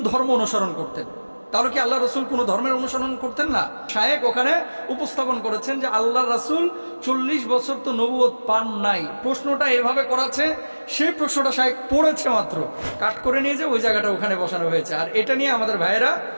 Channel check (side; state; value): both; inverted; correlation -1.00